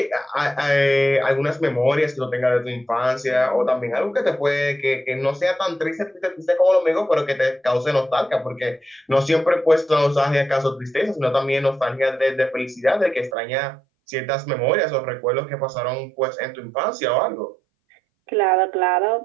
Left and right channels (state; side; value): drops out; left; at 13.4 s